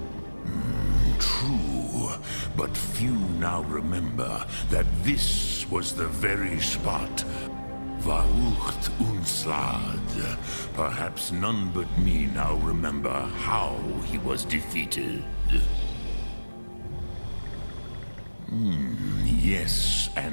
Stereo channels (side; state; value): both; inverted; correlation -1.00